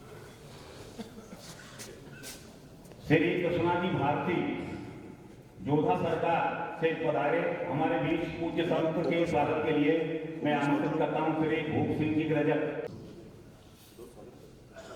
श्री कृष्णा जी भारती जोधा सरकार से पधारे हमारे बीच पूज्य संत के स्वागत के लिए मैं आमंत्रित करता हूं श्री भूप सिंह जी रजक।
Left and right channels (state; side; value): identical; both; correlation 1.00